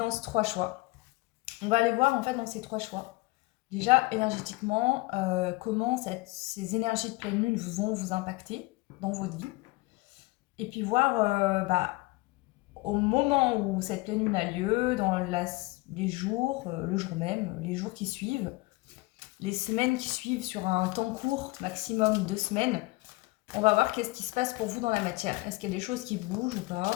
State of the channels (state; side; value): quieter; right; 23.1 dB